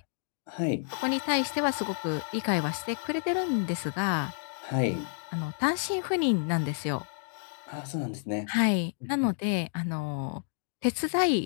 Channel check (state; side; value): silent; right; digital silence